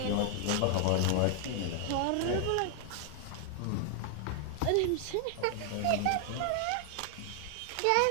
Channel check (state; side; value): different; both; correlation 0.00